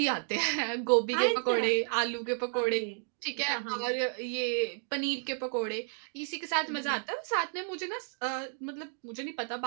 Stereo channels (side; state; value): left; silent; 57 dB below the other